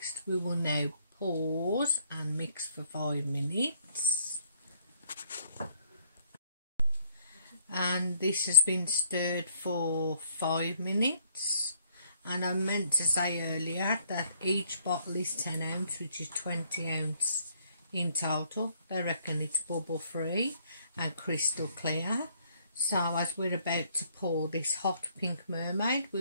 We will now pause and mix for 5 minutes. And this has been stirred for 5 minutes. And I meant to say earlier that each bottle is 10 ounce, which is 20 ounce in total. They reckon it's bubble free and crystal clear. So as we're about to pour this hot pink mermaid,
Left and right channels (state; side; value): inverted; both; correlation -0.65